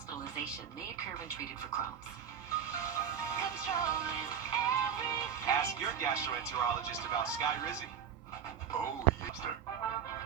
may occur when treated for Crohn's. Ask your gastroenterologist about Skyrizi. Oh, yes, sir.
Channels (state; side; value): quieter; left; 8.2 dB